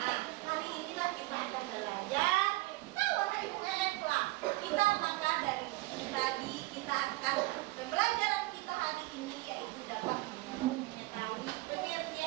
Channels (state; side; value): quieter; left; 20.5 dB